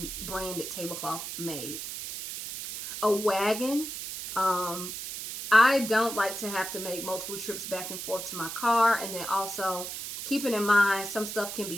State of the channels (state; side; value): noise; right; hiss, 7 dB below the sound